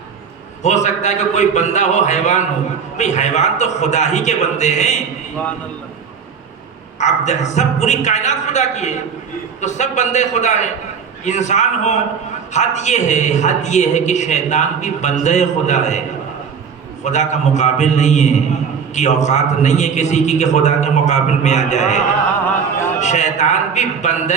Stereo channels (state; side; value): quieter; left; 6.4 dB